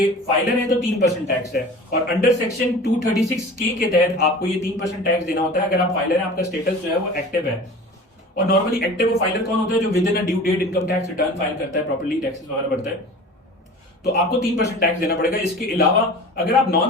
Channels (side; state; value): both; normal; correlation 0.39